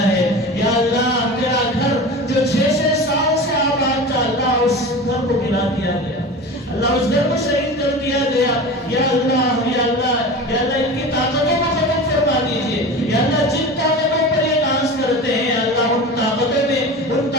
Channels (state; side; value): normal; both; correlation 0.32